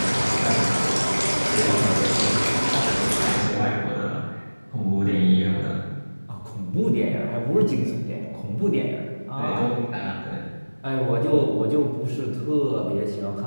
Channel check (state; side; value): inverted; both; correlation -1.00